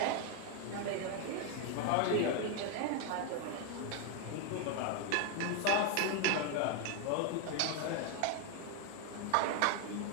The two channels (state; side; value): different; both; correlation 0.01